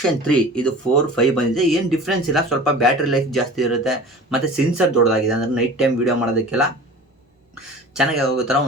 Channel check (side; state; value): both; normal; correlation 0.39